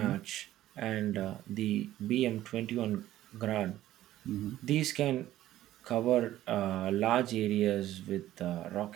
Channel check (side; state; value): left; quieter; 14.0 dB